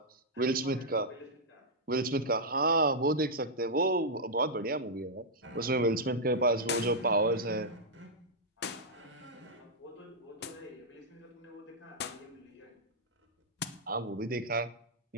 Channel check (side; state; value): both; normal; correlation -0.07